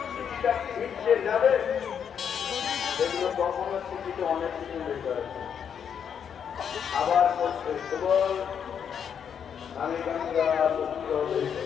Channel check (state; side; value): quieter; right; 7.8 dB